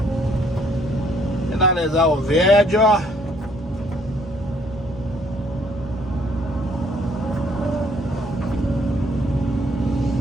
Finalizar o vídeo.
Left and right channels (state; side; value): normal; both; correlation 0.64